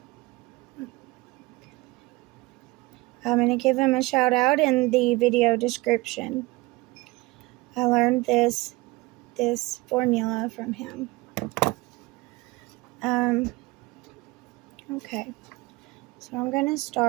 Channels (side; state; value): left; quieter; 22.2 dB